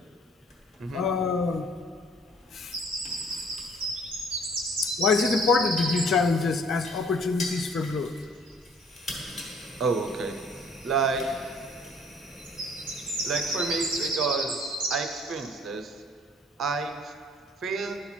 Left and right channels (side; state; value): both; normal; correlation 0.56